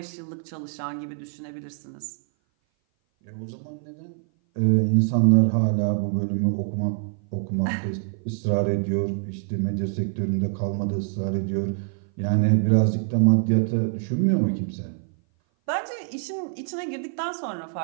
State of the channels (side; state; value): left; silent; 57 dB below the other